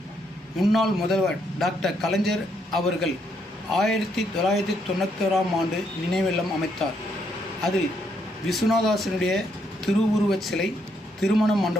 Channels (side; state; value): both; normal; correlation 0.74